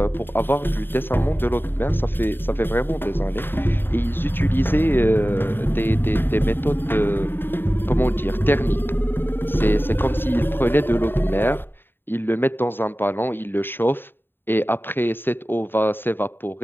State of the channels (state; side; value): late; right; 0.099 ms